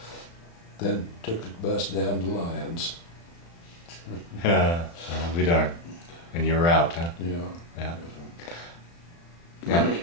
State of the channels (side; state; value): right; late; 35 ms